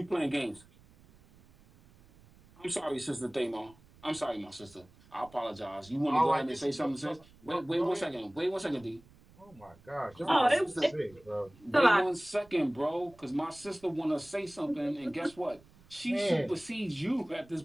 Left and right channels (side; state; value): right; noise; rumble, 26 dB below the sound